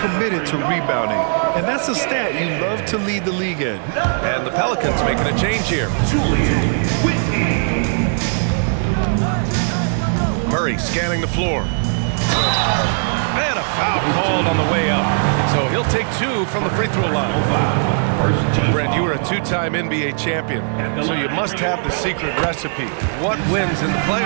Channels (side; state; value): left; silent; digital silence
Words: to rebounding. And that's a stat you love to lead the league in. And the Pelicans making a change here. Julian Whitney. Murray scanning the floor. And a foul called on the way up. So he'll take 2 from the free throw line. Brent, you were a 2-time NBA champion, so you must have the secret recipe. What wins in the